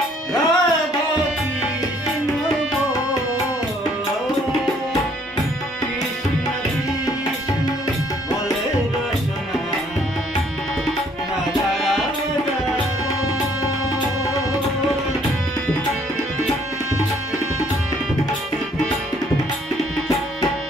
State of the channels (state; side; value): normal; both; correlation 0.63